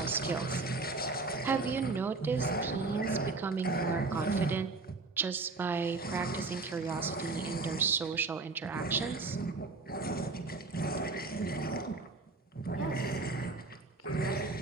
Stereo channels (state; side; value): quieter; left; 3.7 dB